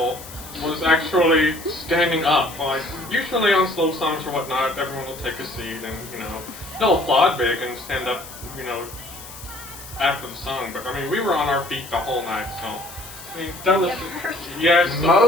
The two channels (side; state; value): left; noise; hiss, 15 dB below the sound